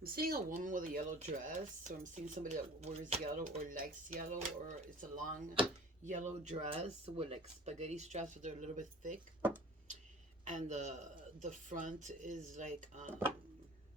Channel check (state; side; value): normal; both; correlation 0.44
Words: I'm seeing a woman with a yellow dress, or I'm seeing somebody that wears yellow or likes yellow, or it's a long yellow dress with like spaghetti straps, but they're a little bit thick, and the front is like